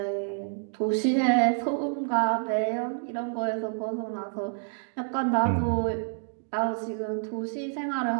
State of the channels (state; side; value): silent; left; 59 dB below the other